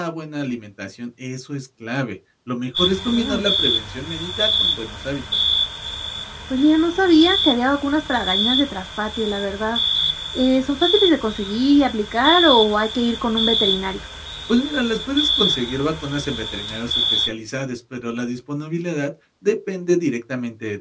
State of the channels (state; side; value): identical; both; correlation 1.00